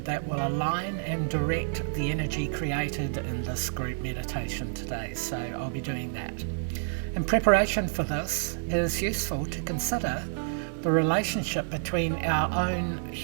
that will align and direct the energy created in this group meditation today. So I'll be doing that. In preparation for this, it is useful to consider the relationship between our own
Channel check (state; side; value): silent; left; 59 dB below the other